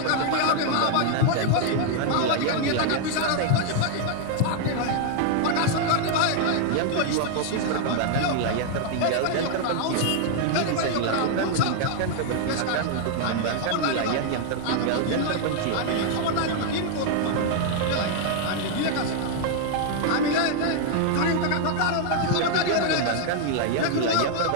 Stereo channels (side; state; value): both; different; correlation 0.00